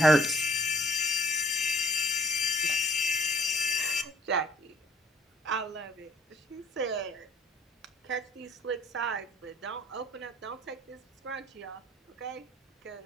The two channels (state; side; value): normal; both; correlation 0.56